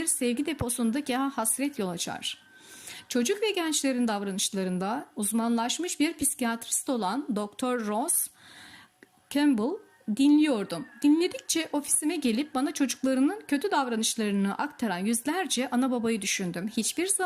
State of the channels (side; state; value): both; identical; correlation 1.00